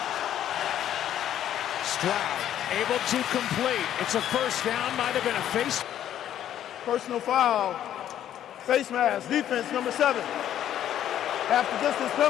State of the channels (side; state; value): right; quieter; 11.0 dB